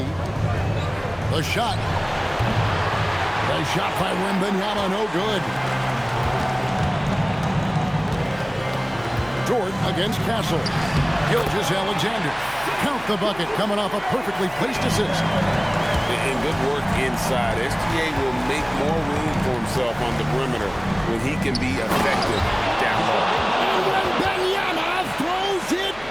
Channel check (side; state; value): left; noise; hum, 20 dB below the sound